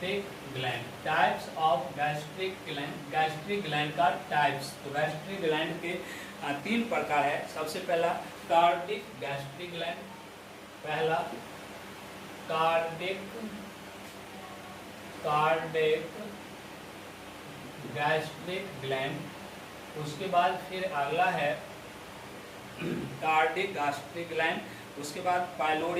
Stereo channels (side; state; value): both; identical; correlation 1.00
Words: gland, types of gastric gland, gastric gland का टाइप्स। तो गैस्ट्रिक ग्लैंड के 3 प्रकार है। सबसे पहला कार्डिक गैस्ट्रिक ग्लैंड, पहला कार्डिक गैस्ट्रिक ग्लैंड। उसके बाद फिर अगला है कार्डिक गैस्ट्रिक ग्लैंड, उसके बाद